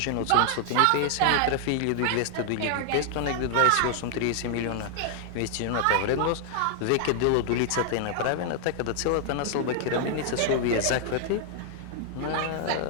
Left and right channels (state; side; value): different; both; correlation 0.00